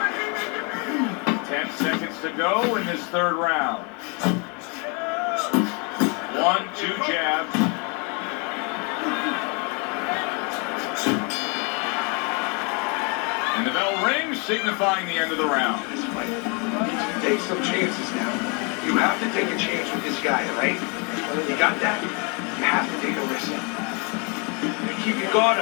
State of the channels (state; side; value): quieter; right; 33.7 dB